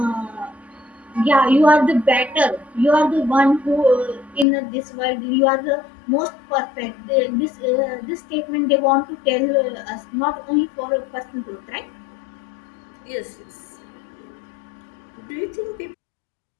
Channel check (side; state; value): right; drops out; at 4.5 s